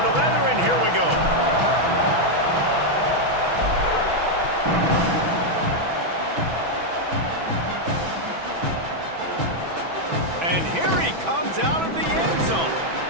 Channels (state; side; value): late; left; 6.1 ms